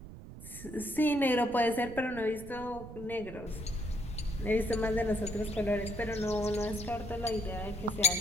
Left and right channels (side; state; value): right; noise; rumble, 13 dB below the sound